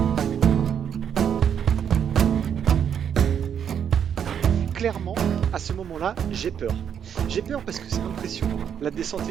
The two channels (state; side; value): quieter; left; 8.3 dB